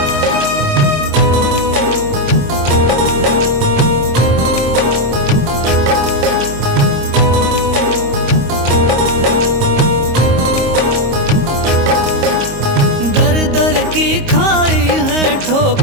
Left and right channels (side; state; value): left; late; 26 ms